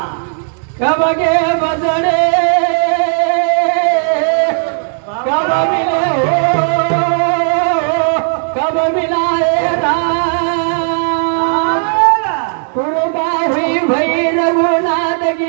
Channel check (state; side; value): silent; left; digital silence